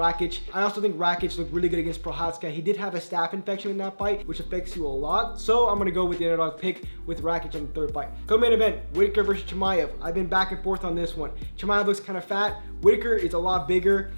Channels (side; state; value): both; inverted; correlation -1.00